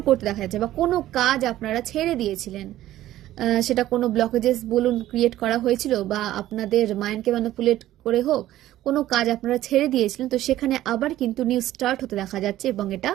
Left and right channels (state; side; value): quieter; left; 14.1 dB